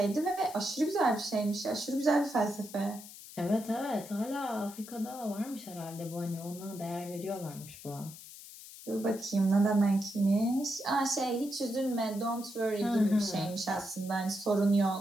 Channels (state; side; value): noise; left; hiss, 16 dB below the sound